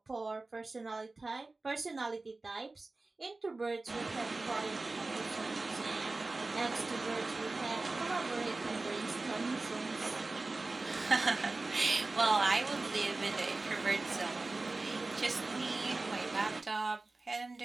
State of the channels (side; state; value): left; quieter; 3.3 dB